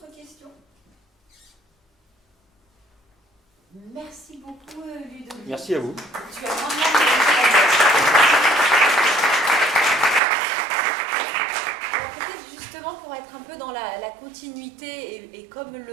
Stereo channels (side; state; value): left; drops out; at 10.2 s